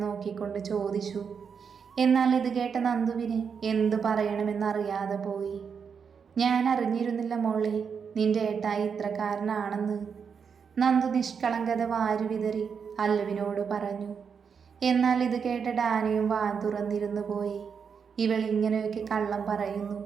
നോക്കിക്കൊണ്ട് ചോദിച്ചു. എന്നാൽ ഇത് കേട്ട നന്ദുവിന് എന്തു പറയണമെന്നറിയാതെ പോയി. ഞാൻ അറിഞ്ഞിരുന്നില്ല മോളെ നിന്റെ ഏട്ടായി ഇത്രക്കാരനാണെന്ന്. നന്ദു നിഷ്കളങ്കത വാരി വിതറി അല്ലുവിനോട് പറഞ്ഞു. എന്നാൽ ഇത് കേട്ട ഡാനിയും വാ തുറന്നിരുന്നു പോയി. ഇവൾ ഇങ്ങനെയൊക്കെ കള്ളം പറയുന്നു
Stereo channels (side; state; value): left; quieter; 6.4 dB